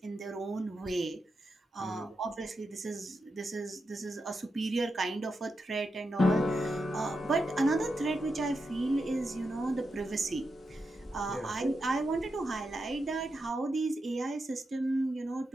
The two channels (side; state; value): both; normal; correlation 0.87